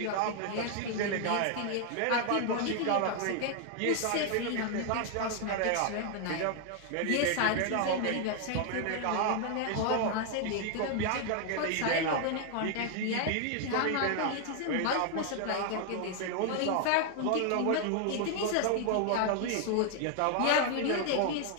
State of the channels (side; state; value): both; different; correlation 0.00